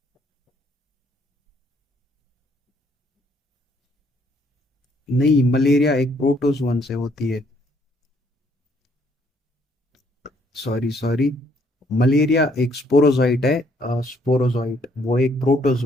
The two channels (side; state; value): both; normal; correlation 0.67